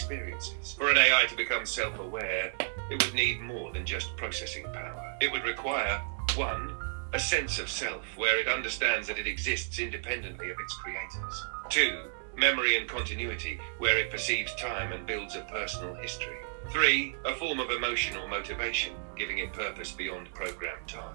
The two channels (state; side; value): silent; left; digital silence